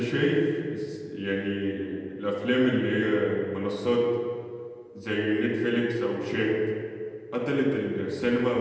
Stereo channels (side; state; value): both; identical; correlation 1.00